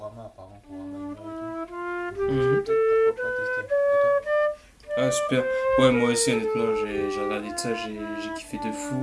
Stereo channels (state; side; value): identical; both; correlation 1.00